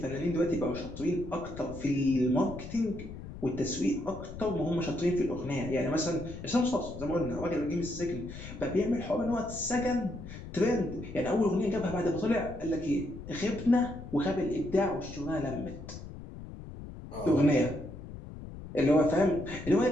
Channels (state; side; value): noise; left; rumble, 12 dB below the sound